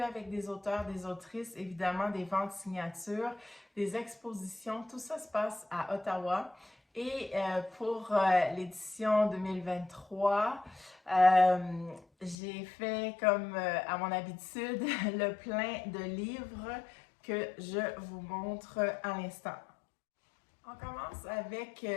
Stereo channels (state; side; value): drops out; right; at 12.4 s